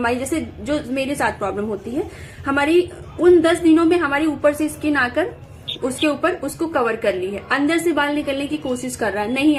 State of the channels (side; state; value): both; identical; correlation 1.00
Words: जैसे जो मेरे साथ प्रॉब्लम होती है, हमारी उन 10 दिनों में हमारी ऊपर से स्किन आकर उसके ऊपर उसको कवर कर ली है, अंदर से बाल निकलने की कोशिश कर रहा है, नहीं